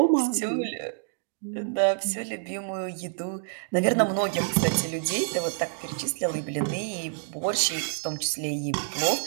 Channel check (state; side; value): silent; left; digital silence